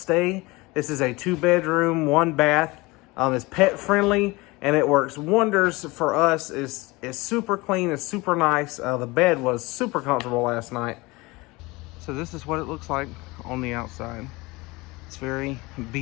this is a 2-bedroom, 1-bath. It's pet friendly and it works wonders for us. It's super clean, it's super nice. The bed was super comfortable last night. So this is what it looks like on the outside. It's very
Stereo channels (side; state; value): right; quieter; 23.0 dB